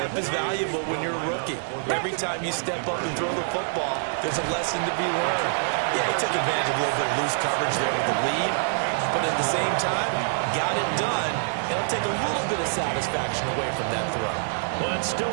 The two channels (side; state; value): left; silent; 61 dB below the other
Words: is valuable when you're a rookie. Every time you step up and throw the football, there's a lesson to be learned. Yeah, he took advantage of a little bit of loose coverage there with the lead. But at the same time, got it done. It'll take a little bit of satisfaction away from that throw. Well, it's still